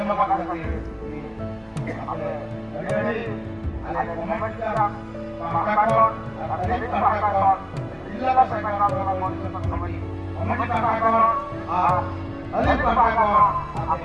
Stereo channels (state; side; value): identical; both; correlation 1.00